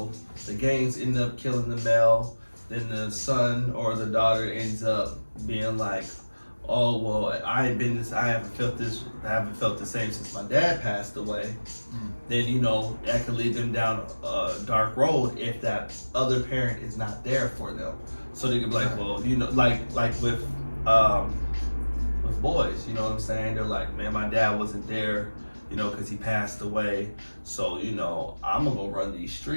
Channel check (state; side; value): inverted; both; correlation -1.00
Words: the gangs end up killing the male, then the son or the daughter ends up being like, oh well, I haven't felt the same since my dad passed away. Then, you know, that could lead them down a dark road if that other parent is not there for them. So they could be like, well, you know, like with boys, you know what I'm saying? They're like, man, my dad wasn't there, you know, because he passed away. So, you know, I'm gonna go run these